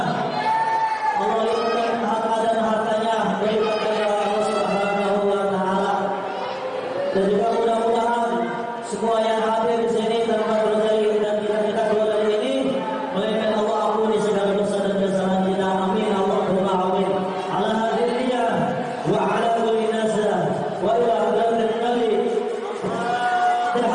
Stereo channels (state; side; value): identical; both; correlation 1.00